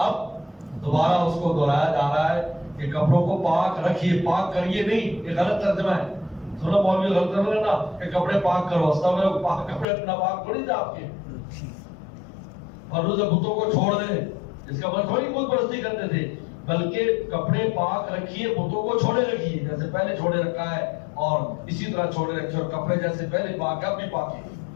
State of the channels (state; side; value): drops out; right; at 9.9 s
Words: دوبارہ اس کو دہرایا جا رہا ہے کہ کپڑوں کو پاک رکھیے، پاک کریے نہیں، یہ غلط ترجمہ ہے۔ سنو مولوی غلط ترجمہ ہے نا کہ کپڑے پاک کرو، استغفر پاک کپڑے اپنا پاک تھوڑی تھے آپ کے، اور روزہ بتوں کو چھوڑ دیں، اس کا مطلب تھوڑی بت پرستی کرتے تھے، بلکہ کپڑے پاک رکھیے، بتوں کو چھوڑے رکھیے، جیسے پہلے چھوڑے رکھا ہے اور اسی طرح چھوڑے رکھیے، اور کپڑے جیسے پہلے پاک اب بھی پاک ہے،